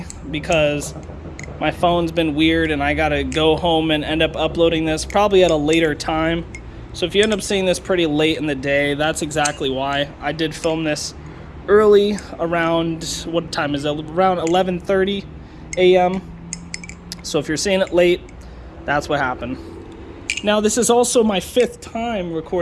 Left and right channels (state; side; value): identical; both; correlation 1.00